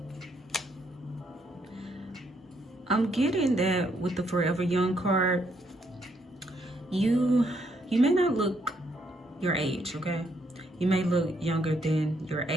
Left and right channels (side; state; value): both; normal; correlation 0.73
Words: I'm getting that with the Forever Young card, you may not look your age, okay? You may look younger than your